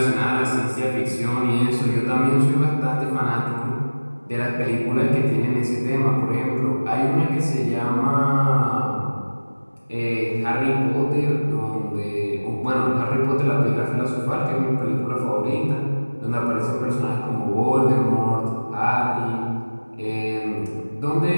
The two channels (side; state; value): both; inverted; correlation -1.00